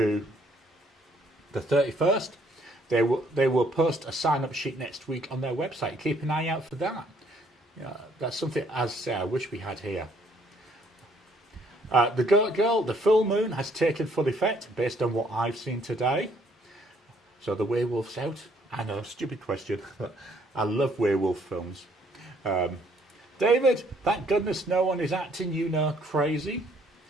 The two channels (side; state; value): both; normal; correlation 0.65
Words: the 31st. They will post a sign-up sheet next week on their website. Keep an eye out for that. That's something, as I say, I wish we had here. The Goat Girl, the full moon has taken full effect based on what I've seen today. So the werewolf's out. I know, stupid question, but I love werewolf films. David, thank goodness no one is acting, crazy.